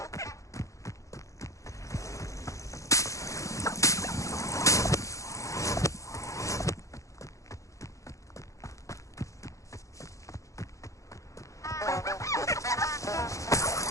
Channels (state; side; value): late; right; 0.15 ms